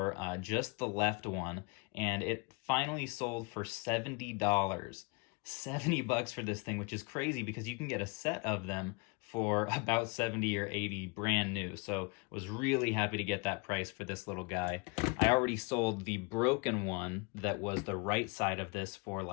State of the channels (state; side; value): quieter; right; 30.1 dB